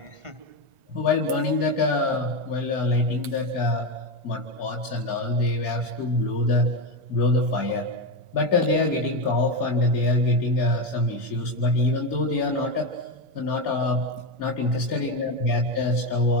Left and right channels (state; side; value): late; left; 1.4 ms